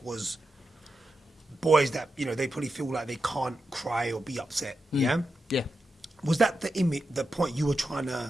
was boys that, you know, they probably feel like they can't cry or be upset, yeah? Yeah. Was that the point you were trying to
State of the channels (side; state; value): both; normal; correlation 0.88